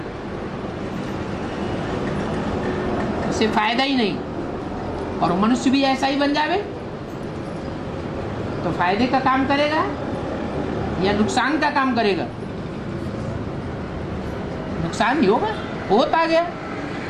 इससे फायदा ही नहीं। और मनुष्य भी ऐसा ही बन जावे तो फायदे का काम करेगा या नुकसान का काम करेगा? नुकसान ही होगा। होता गया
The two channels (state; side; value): identical; both; correlation 1.00